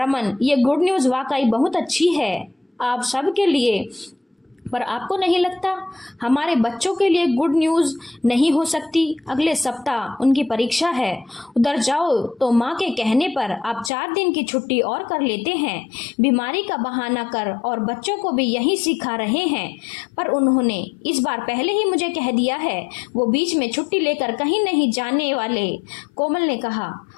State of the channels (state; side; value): drops out; right; at 13.9 s